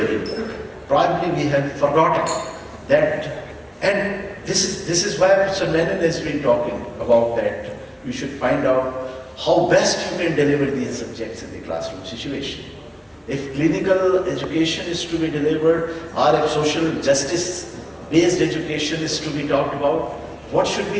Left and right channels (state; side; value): identical; both; correlation 1.00